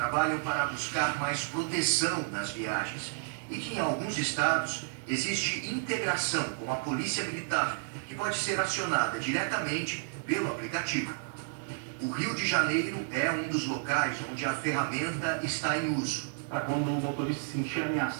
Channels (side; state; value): left; silent; digital silence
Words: para buscar mais proteção nas viagens e que em alguns estados existe integração com a Polícia Militar, que pode ser acionada diretamente pelo aplicativo. O Rio de Janeiro é um dos locais onde a ferramenta está em uso. Para quando o motorista se sentir